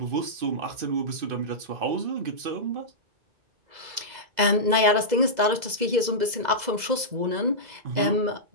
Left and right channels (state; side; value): late; left; 2.0 ms